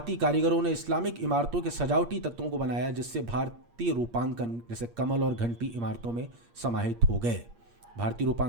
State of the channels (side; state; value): left; late; 8.5 ms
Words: कारीगरों ने इस्लामिक इमारतों के सजावटी तत्वों को बनाया, जिससे भारतीय रूपांकन जैसे कमल और घंटी इमारतों में समाहित हो गए। भारतीय